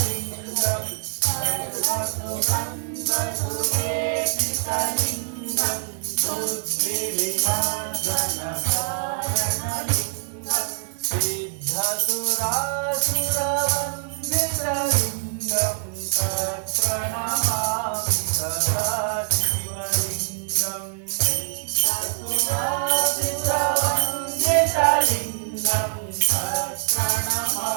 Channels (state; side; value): silent; left; 59 dB below the other